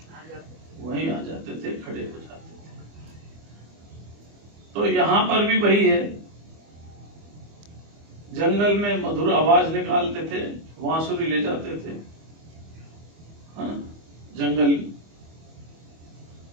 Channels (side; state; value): left; late; 25 ms